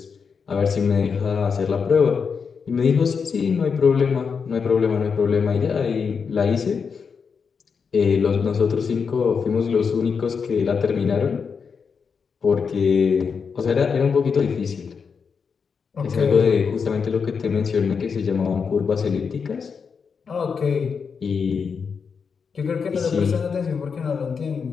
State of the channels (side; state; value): right; quieter; 5.9 dB